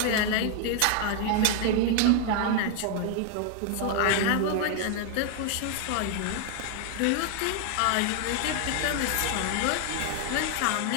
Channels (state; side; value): different; both; correlation 0.00